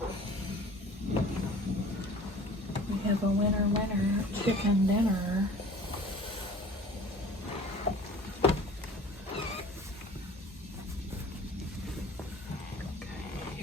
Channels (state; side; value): normal; both; correlation 0.45